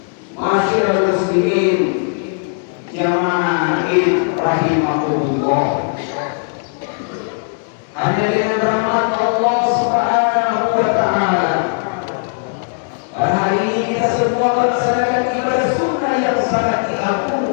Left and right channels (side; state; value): right; silent; 68 dB below the other